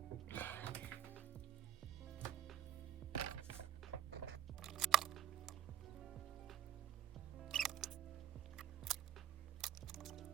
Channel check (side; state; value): left; quieter; 10.7 dB